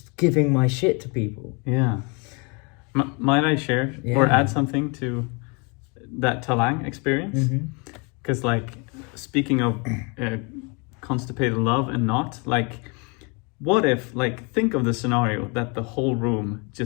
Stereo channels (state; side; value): quieter; right; 32.1 dB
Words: giving my shit to people. Yeah. Might I share or add something to that Talang experience? Because like speaking of constipated love and not, like what if, like, think of the scenario that the whole room